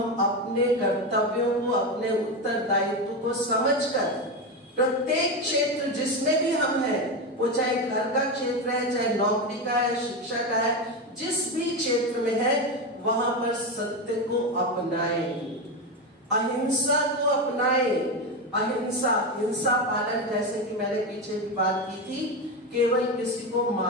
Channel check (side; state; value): both; normal; correlation 0.15